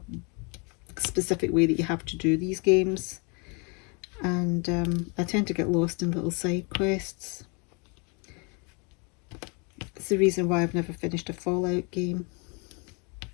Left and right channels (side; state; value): right; quieter; 33.3 dB